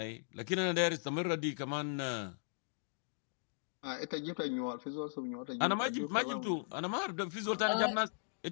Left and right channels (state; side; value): silent; right; digital silence